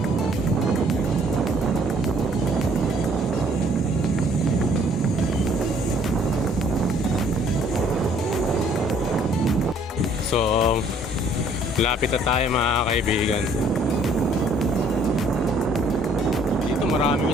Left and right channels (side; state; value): both; normal; correlation 0.60